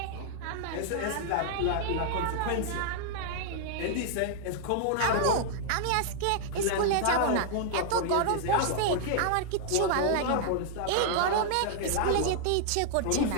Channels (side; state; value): both; different; correlation 0.00